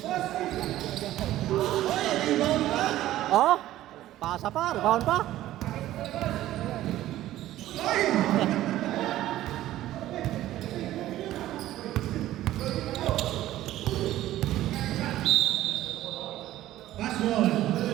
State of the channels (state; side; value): quieter; left; 14.3 dB